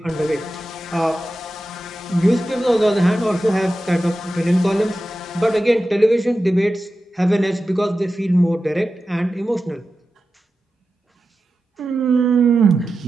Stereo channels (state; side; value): normal; both; correlation 0.92